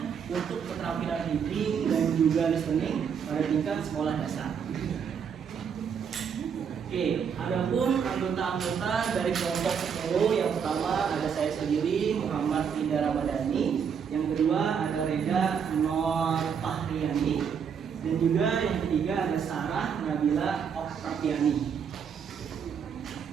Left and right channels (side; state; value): left; quieter; 7.1 dB